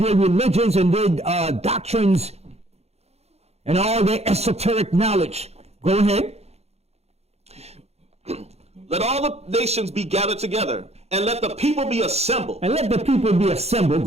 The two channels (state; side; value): late; left; 0.31 ms